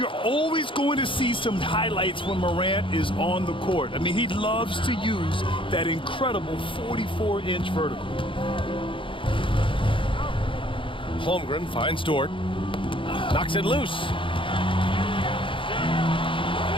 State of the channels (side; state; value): right; late; 0.25 ms